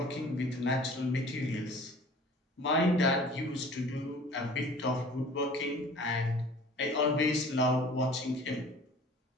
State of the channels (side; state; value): both; normal; correlation 0.47